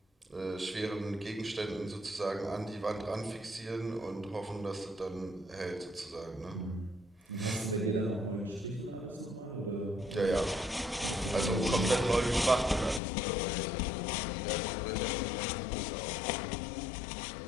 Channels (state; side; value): drops out; right; at 13.0 s